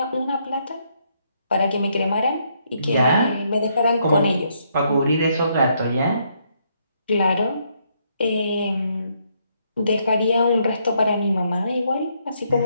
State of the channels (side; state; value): both; inverted; correlation -0.74